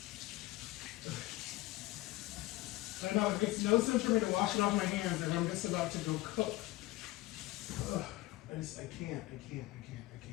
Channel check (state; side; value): quieter; right; 18.3 dB